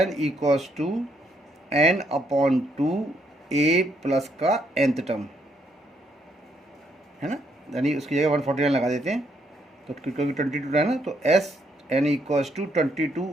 equals to n/2 a plus का nth टर्म, है ना, यानी उसकी जगह 149 लगा देते हैं। तो क्योंकि 22 है ना, तो Sn equals to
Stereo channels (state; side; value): normal; both; correlation 0.74